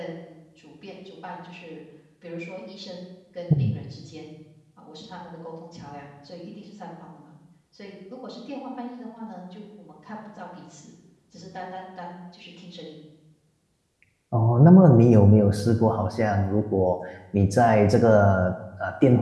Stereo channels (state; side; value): identical; both; correlation 1.00